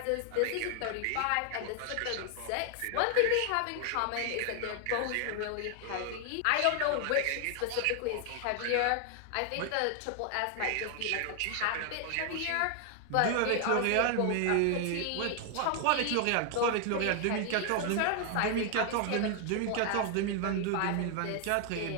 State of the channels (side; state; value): both; different; correlation 0.00